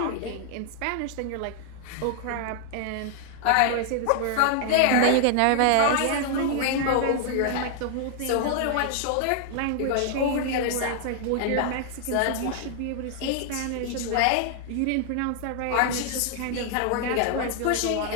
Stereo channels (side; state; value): both; different; correlation 0.00